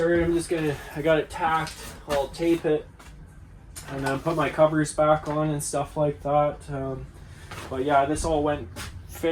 I got it tacked, I'll tape it, and then put my covers back on and stuff like that. But yeah, this all went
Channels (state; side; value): identical; both; correlation 1.00